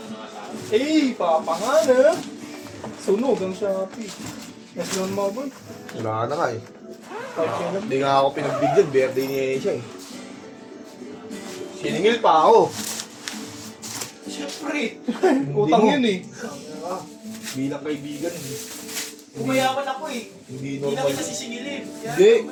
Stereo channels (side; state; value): both; identical; correlation 1.00